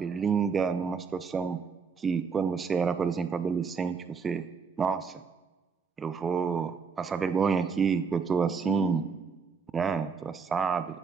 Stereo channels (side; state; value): left; quieter; 5.6 dB